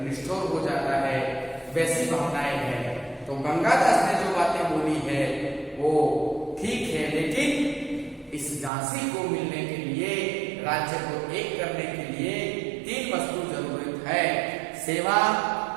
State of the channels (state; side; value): drops out; left; at 8.7 s